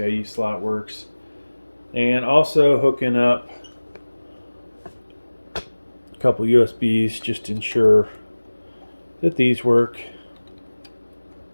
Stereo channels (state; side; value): inverted; both; correlation -1.00